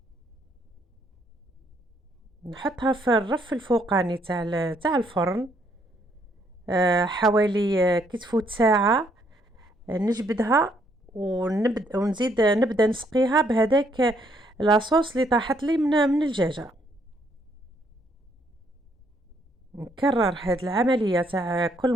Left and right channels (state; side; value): normal; both; correlation 0.70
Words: نحطها في الرف الفوقاني تاع الفرن حوالي كي تفوت ساعه. نجبدها ونزيد نبدا نسقيها بهذاك لاصوص اللي طاحت لي من الدجاجه. نكرر هاد العمليه تاع كل